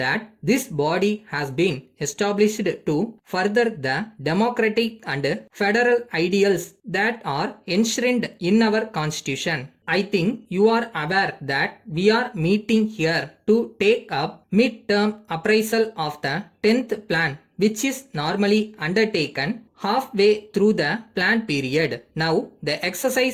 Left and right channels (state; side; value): identical; both; correlation 1.00